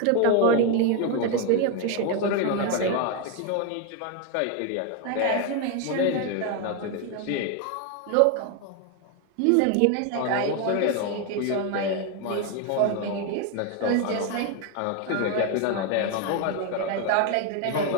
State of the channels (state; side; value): different; both; correlation 0.01